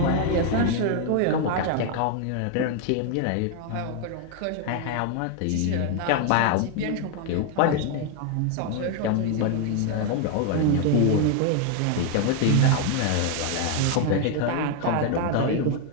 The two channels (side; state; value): both; different; correlation 0.01